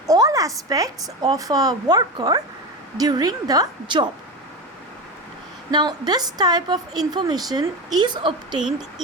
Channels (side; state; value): both; normal; correlation 0.22